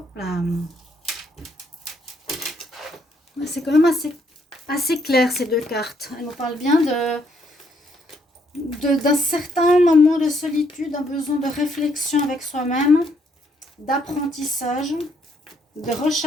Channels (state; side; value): normal; both; correlation 0.71